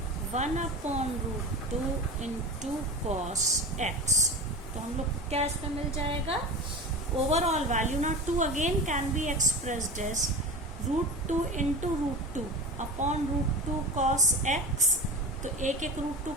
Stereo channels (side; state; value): both; normal; correlation 0.30